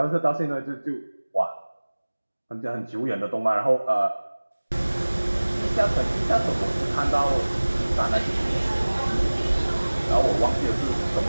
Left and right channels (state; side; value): inverted; both; correlation -1.00